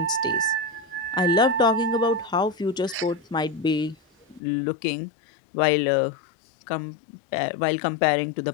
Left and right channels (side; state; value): right; drops out; at 4.4 s